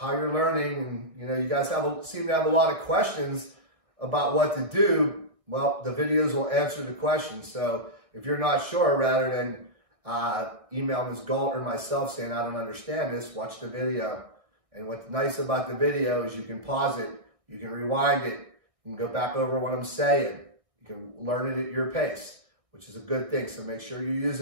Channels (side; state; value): left; late; 1.4 ms